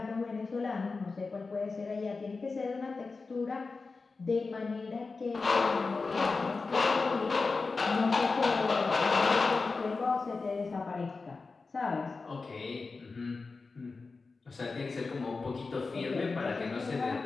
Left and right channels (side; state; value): right; quieter; 4.1 dB